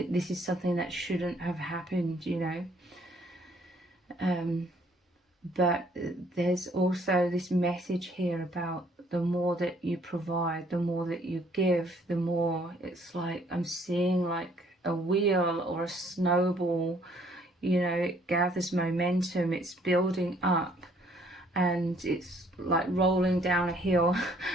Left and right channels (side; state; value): both; normal; correlation 0.63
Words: something that shouldn't have happened, you know. But there's also this message here about the more that you provide, the more that you give, the more it's like I'm seeing like a wheel or a snowball. You know, it gathers momentum, it's building up, and it's like rolling down a hill,